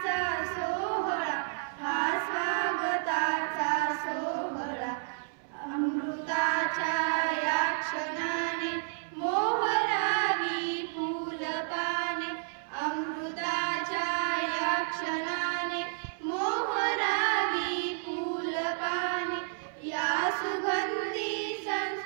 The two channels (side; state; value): left; silent; 57 dB below the other